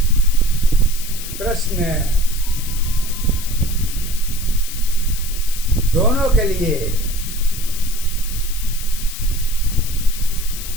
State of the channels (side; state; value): left; noise; hiss, 10 dB below the sound